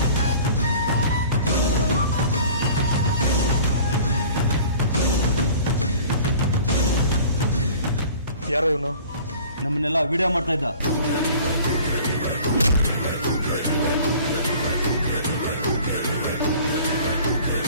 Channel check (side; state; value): both; inverted; correlation -0.46